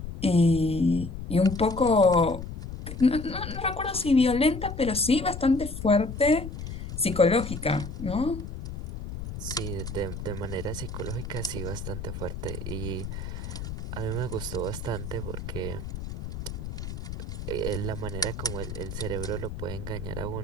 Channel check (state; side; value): noise; left; rumble, 8 dB below the sound